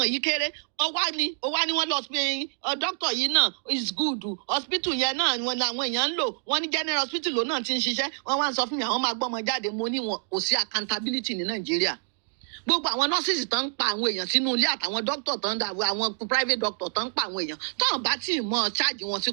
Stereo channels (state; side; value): silent; left; digital silence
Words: yìí kéré ó wá ní wọ́n lọ pé doctor yìí náà is good hospital yẹn náà wọn làwọn èèyàn ń lò wọ́n ní general hospital ló náà ti ń ṣiṣẹ́ wọ́n wá ń sọ fún mi àwọn máa gbọ́ ọmọ jáde mo ní wọn kò sí accountability ní Nàìjíríà gbogbo àwọn nurses tán ń pa àwọn èèyàn sínú ilé àtàwọn doctor tán dà àwọn private doctor tán ń pa àwọn èèyàn tán bá tí ì mọ charge wọn sí